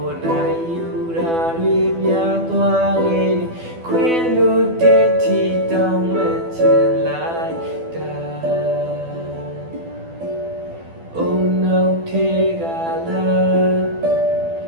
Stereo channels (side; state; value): left; late; 12 ms